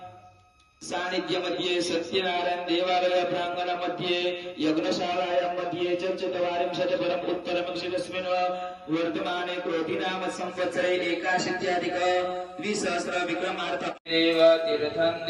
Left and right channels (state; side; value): identical; both; correlation 1.00